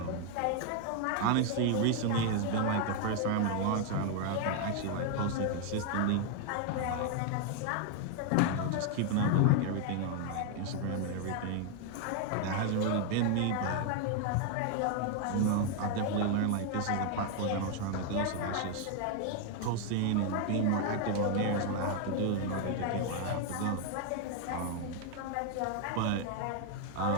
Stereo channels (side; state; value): both; different; correlation 0.01